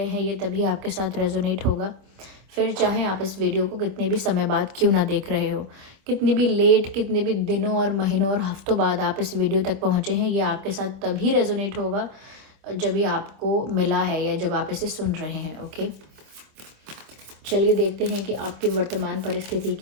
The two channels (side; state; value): left; late; 26 ms